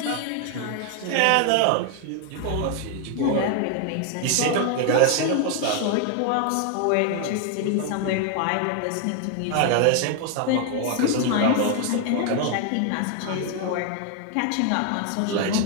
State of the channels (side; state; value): both; different; correlation 0.00